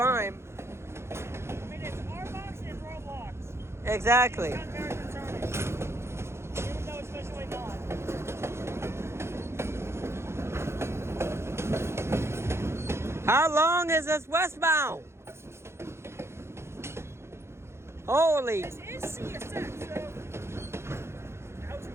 I mean, it's R box and Roblox. Exactly. It's very concerning. Even though it's especially not. How long is this westbound? Holy. This is CSX, so how's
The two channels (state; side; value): late; left; 0.13 ms